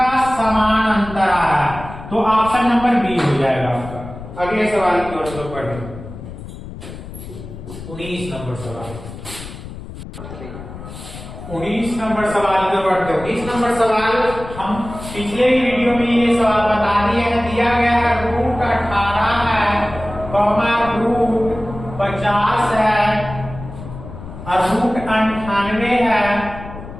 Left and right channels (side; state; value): left; noise; rumble, 12 dB below the sound